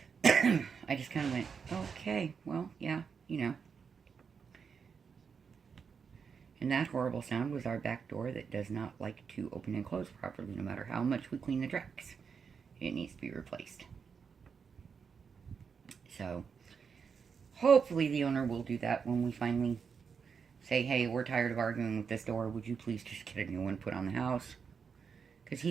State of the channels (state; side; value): quieter; left; 6.1 dB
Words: I just kind of went, okay, well, yeah, you know. And that horrible sound was our back door that does not like to open and close properly, no matter how much we clean the tracks. It needs to be replaced. So, hopefully the owner will do that when we finally say, hey, we're tired of arguing with this door. Would you please just get a new one put on the house? Because